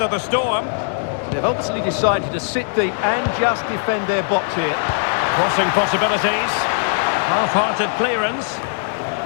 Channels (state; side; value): silent; right; digital silence